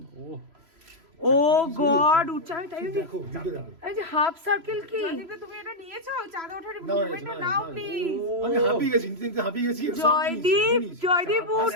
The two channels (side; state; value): left; late; 3.0 ms